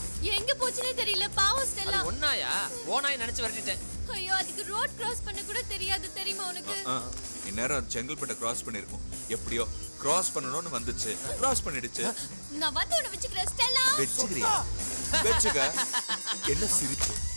எங்க போச்சுனே தெரியல. பாவம் ஸ்டெல்லா. ஒண்ணாயா ஓனாய் நினைச்சு விரட்டிட்டேன். ஐயோ அதுக்கு ரோட் கிராஸ் பண்ண கூட தெரியாது தெரியுமா உனக்கு? இந்நேரம் செங்கல்பட்டை கிராஸ் பண்ணிருக்கும். எப்படியோ கிராஸ் பண்ணணும்னு வந்துச்சு, கிராஸ் பண்ணிடுச்சு. நான் வந்து உன்னை வச்சுக்கிறேன் ஸ்டெல்லா. வெச்சுக்கிறியா? வெச்சுக்க. என்ன சிரிப்பு?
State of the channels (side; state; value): both; inverted; correlation -1.00